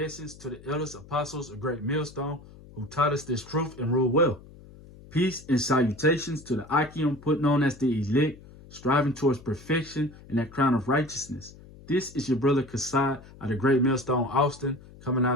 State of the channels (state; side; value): noise; left; hum, 20 dB below the sound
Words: to the elders, apostles, a great millstone who taught us this truth and rule well. Peace and salutations to the Akim, put on as the elect, striving towards perfection and that crown of righteousness. This is your brother Kassad of the Great Millstone Austin, coming